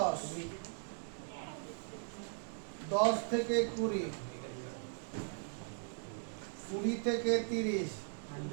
10 থেকে 20, 20 থেকে 30,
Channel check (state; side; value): silent; left; digital silence